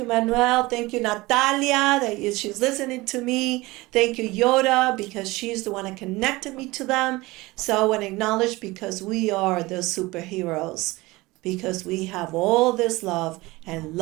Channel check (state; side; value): quieter; left; 21.0 dB